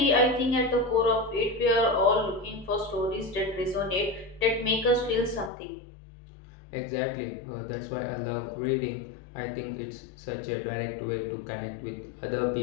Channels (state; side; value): drops out; right; at 5.5 s